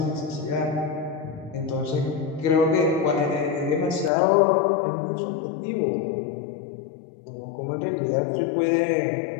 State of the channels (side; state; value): right; drops out; at 4.1 s